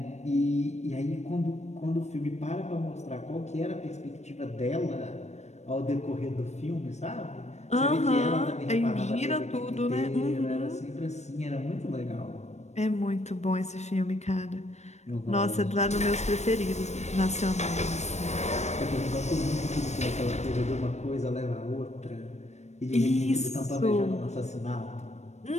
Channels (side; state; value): right; late; 0.32 ms